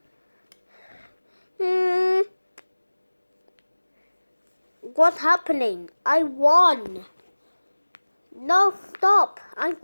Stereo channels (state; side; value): inverted; both; correlation -1.00